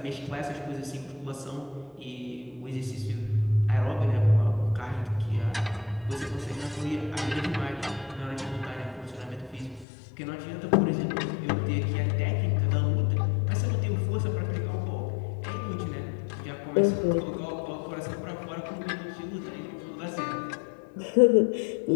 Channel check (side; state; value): right; drops out; at 9.9 s